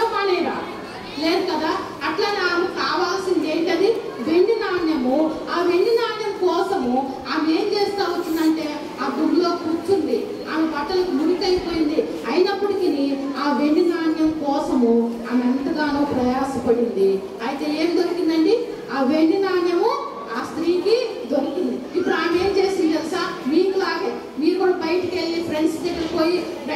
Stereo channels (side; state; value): both; identical; correlation 1.00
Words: మానేరా? లేదు కదా. అట్లనే ఆమె కావాల్సింది ఏంటది, వెండి నాణ్యము. ఆ వెండి నాణ్యం కోసము ఆమె ఏం చేస్తా వచ్చిందంటే ఆ దుమ్ములో కూర్చుంది. ఆమె బట్టలకు మురికైపోయింది. అయినప్పటికీ ఆ వెండి నాణ్యం కోసము ఆమె ఎంతగానో ప్రయాసపడింది. అయితే ఏం దొరికిందండి, ఆ వెండి నాణ్యము ఆ స్త్రీకి దొరికింది. ఇప్పుడు ఆమె ఏం చేసింది తెలుసా, మీకులాగే మీరు కూడా బయటికి వెళ్ళి ఫ్రెండ్స్ దగ్గరికి పోయి